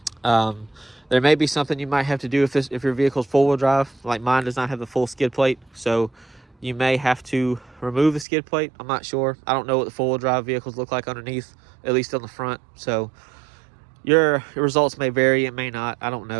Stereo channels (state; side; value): drops out; left; at 8.2 s